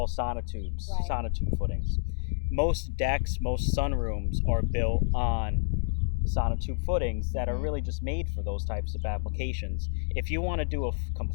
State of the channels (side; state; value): right; silent; digital silence